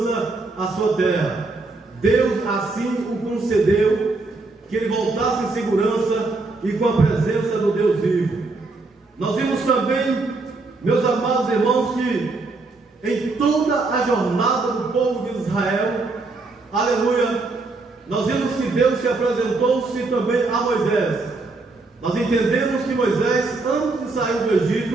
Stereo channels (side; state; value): left; quieter; 3.5 dB